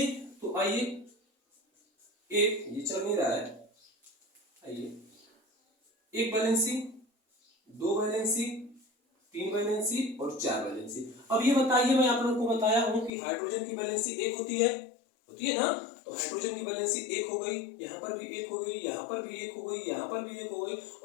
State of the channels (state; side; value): drops out; right; at 13.1 s